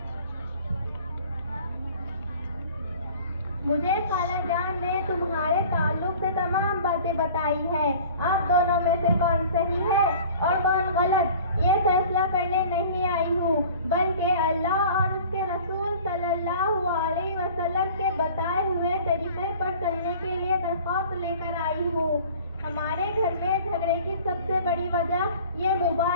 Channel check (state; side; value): inverted; both; correlation -0.46